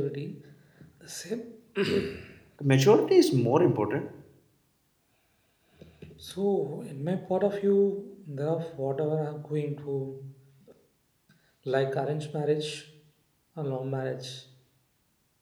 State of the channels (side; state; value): both; identical; correlation 1.00